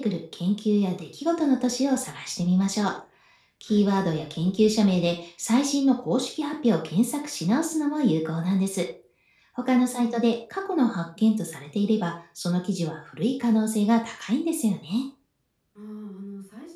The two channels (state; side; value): identical; both; correlation 1.00